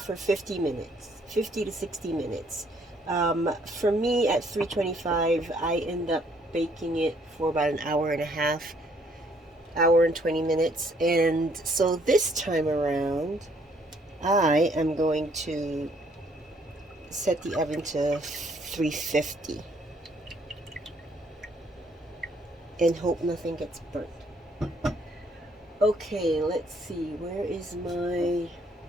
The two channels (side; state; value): both; normal; correlation 0.65